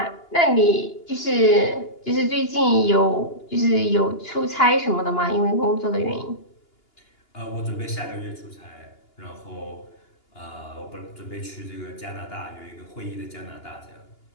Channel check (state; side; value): late; right; 2.8 ms